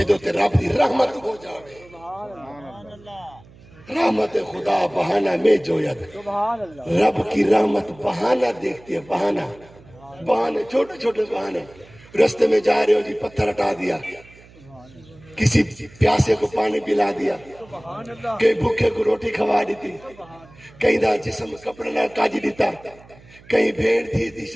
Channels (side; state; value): right; noise; hum, 24 dB below the sound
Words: تے رب دی رحمت ہو جاوے، رحمت خدا بہانہ میں جوید، رب کی رحمت بہانہ دیکھتی ہے، بہانہ چھوٹے چھوٹے بہانے۔ رستے میں جا رہے ہو جی، پتھر ہٹا دیا، کسی پیاسے کو پانی پلا دیا، کئی بھوکے کو روٹی کھوا دیتی، کئی دا جسم کپڑے نہ کاجی دیتا، کئی بھیڑ تھی